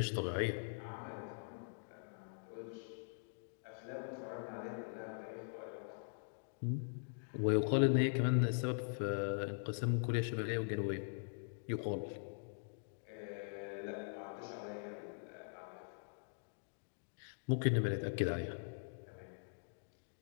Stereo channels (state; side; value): silent; right; digital silence